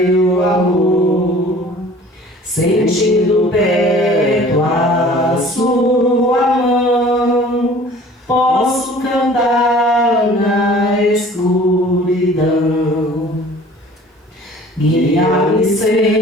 amor, sentindo perto a sua mão, posso cantar na escuridão. Guia-me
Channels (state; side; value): normal; both; correlation 0.48